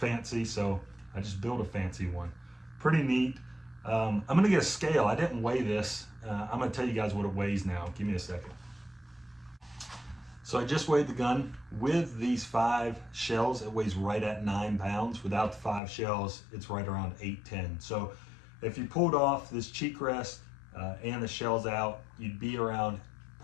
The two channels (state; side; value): drops out; right; at 15.8 s